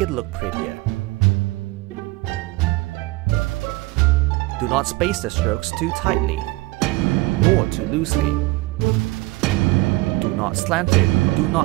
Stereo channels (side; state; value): left; quieter; 20.9 dB